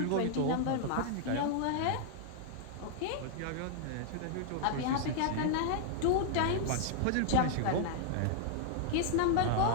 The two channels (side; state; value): both; different; correlation -0.01